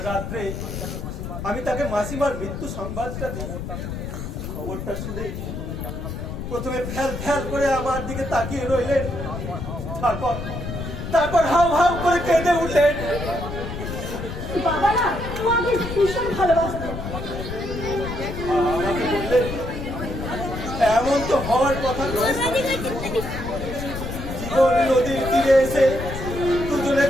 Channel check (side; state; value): left; noise; rumble, 6 dB below the sound